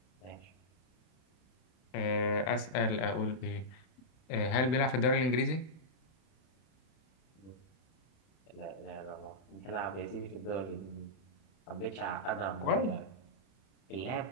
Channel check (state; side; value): late; right; 32 ms